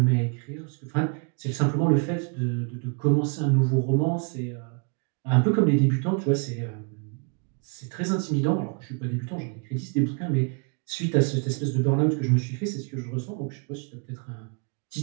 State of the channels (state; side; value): quieter; left; 37.0 dB